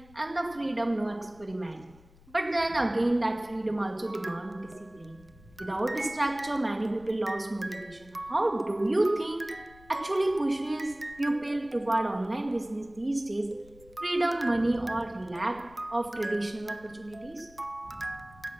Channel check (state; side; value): noise; left; rumble, 24 dB below the sound